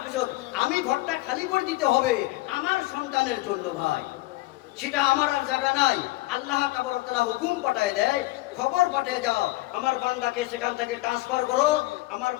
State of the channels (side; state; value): right; quieter; 19.7 dB